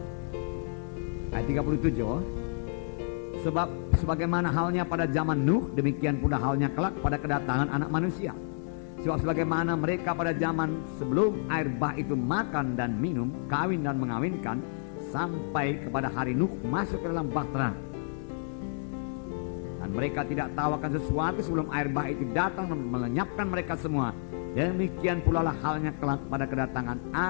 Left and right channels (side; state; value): right; silent; digital silence